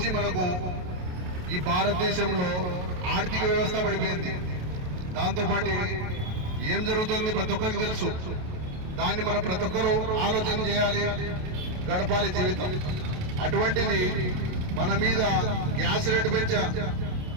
మనకు ఈ భారతదేశంలో ఆర్థిక వ్యవస్థ పడిపోయింది. దాంతోపాటు ఏం జరుగుతుంది ప్రతి ఒక్కరికి తెలుసు. దాన్ని మనం ప్రతి ఒక్కరూ ఆలోచన చేయాలి, గడపాలి జీవితం. అటువంటిది మన మీద గ్యాస్ రేటు పెంచా,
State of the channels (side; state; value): left; late; 28 ms